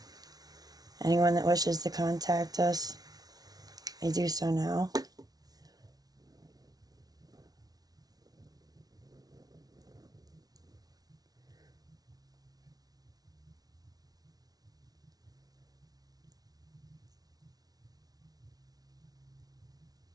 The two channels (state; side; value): late; left; 0.19 ms